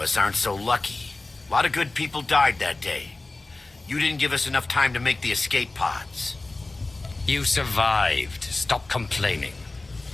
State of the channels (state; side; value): quieter; right; 3.2 dB